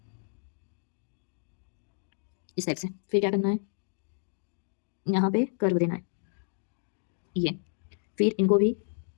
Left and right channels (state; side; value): silent; right; digital silence